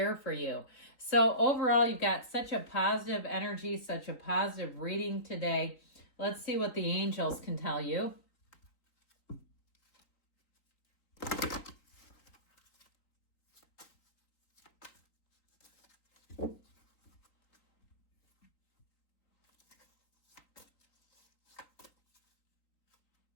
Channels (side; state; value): right; late; 3.9 ms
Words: for you. So overall, you've got such a positive energy, such a positive reading today. Let's see what the angels can tell you.